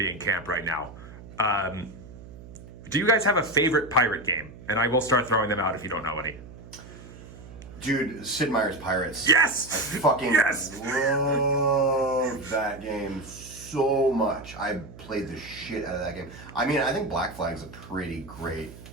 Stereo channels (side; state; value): right; noise; hum, 17 dB below the sound